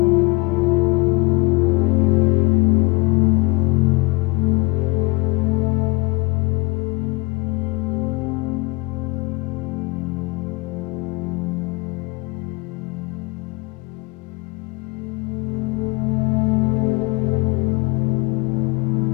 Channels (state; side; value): quieter; right; 25.9 dB